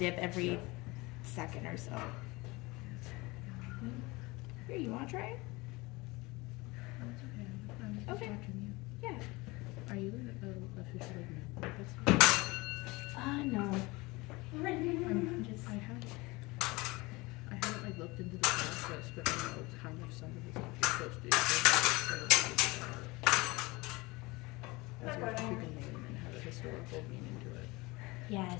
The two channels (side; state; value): right; quieter; 23.4 dB